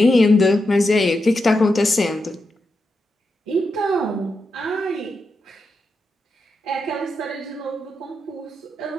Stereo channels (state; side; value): normal; both; correlation 0.86